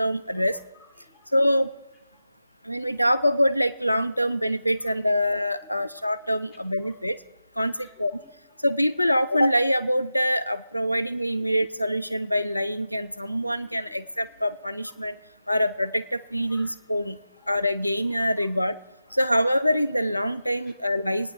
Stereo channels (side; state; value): both; inverted; correlation -0.93